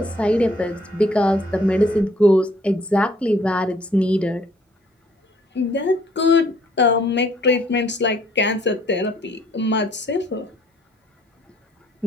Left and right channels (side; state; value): both; normal; correlation 0.62